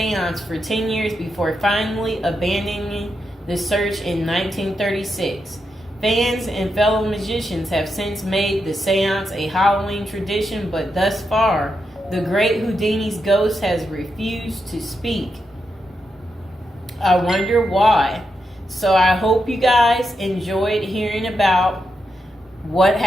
for 10 years before finally abandoning the search in 1936. Fans and fellow magicians have since made the seance a Halloween tradition, but thus far, the great Houdini's ghost has refused to speak. I wonder why. So I hope you guys enjoyed hearing about what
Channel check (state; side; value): normal; both; correlation 0.85